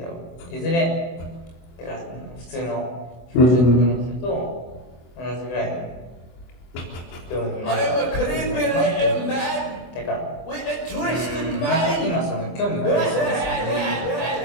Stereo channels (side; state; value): right; late; 24 ms